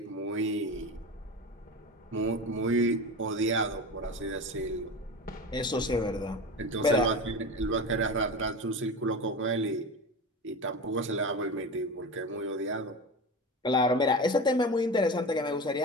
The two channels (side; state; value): both; normal; correlation 0.27